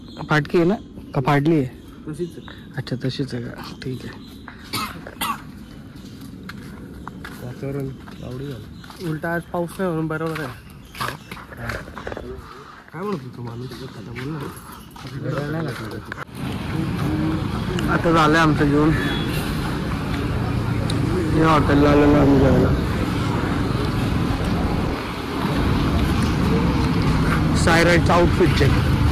फाटकी आहे ना का फाडली आहे? अच्छा तशीच आहे का? ठीक आहे. वातावरण आवडी झालं. उलटा आज पाऊस नाही म्हणून बरोबर आहे. काय म्हणत होतो माणूस? आता झालंय आमचं जेवण. या हॉटेलला आलेलो आम्ही जेवायला. सायराइडचा आउटफिट चेक.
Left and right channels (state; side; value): identical; both; correlation 1.00